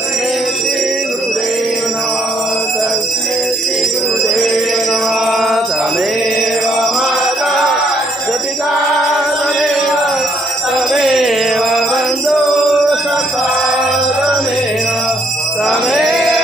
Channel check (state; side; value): normal; both; correlation 0.70